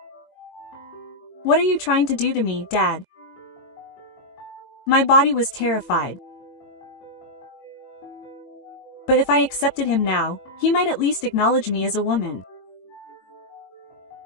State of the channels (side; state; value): right; late; 22 ms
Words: What are you trying to do to me, Dad? My body was terrified. But if I accepted him now, he might at least acknowledge me as a woman.